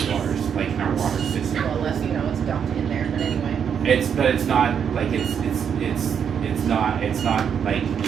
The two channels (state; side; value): quieter; left; 7.7 dB